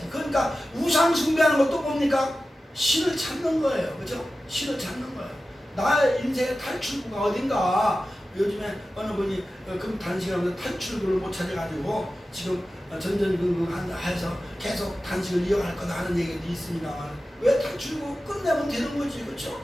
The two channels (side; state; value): both; normal; correlation 0.94